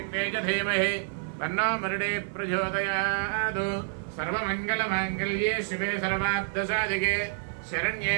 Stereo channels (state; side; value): silent; left; 59 dB below the other